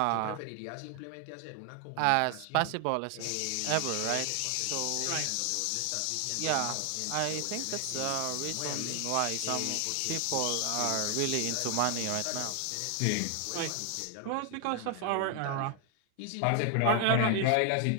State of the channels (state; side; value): different; both; correlation 0.00